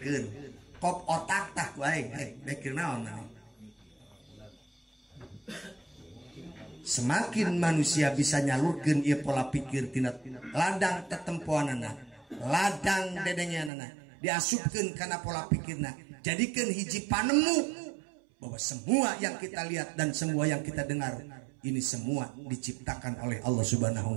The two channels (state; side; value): drops out; left; at 13.7 s